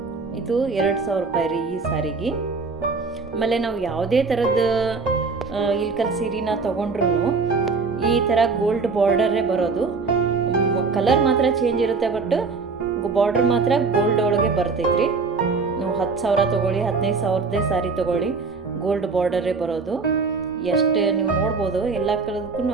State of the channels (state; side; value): quieter; left; 4.5 dB